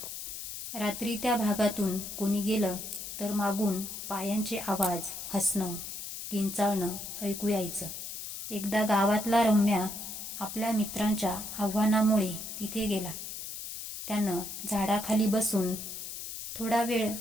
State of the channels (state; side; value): noise; left; hiss, 8 dB below the sound